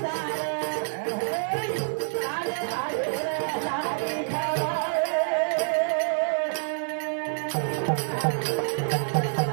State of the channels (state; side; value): silent; left; digital silence